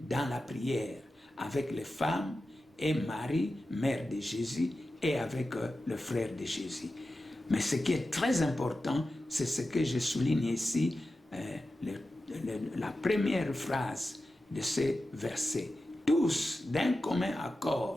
dans la prière avec les femmes et Marie, mère de Jésus, et avec le frère de Jésus. Mais ce qui est très important, c'est ce que je souligne ici, la première phrase de ce verset. Tous, d'un commun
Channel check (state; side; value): normal; both; correlation 0.93